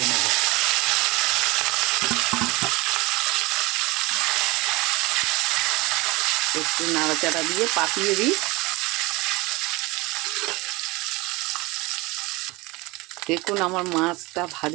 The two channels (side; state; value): left; quieter; 23.1 dB